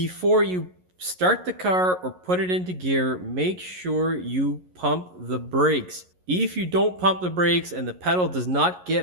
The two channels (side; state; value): left; late; 11 ms